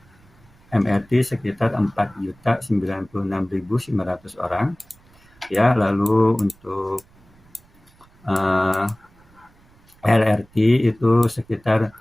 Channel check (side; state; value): right; noise; rumble, 29 dB below the sound